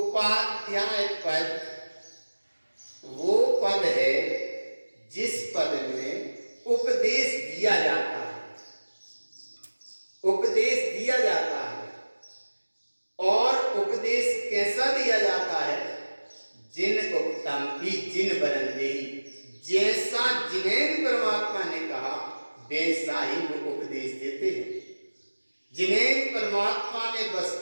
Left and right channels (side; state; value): both; inverted; correlation -1.00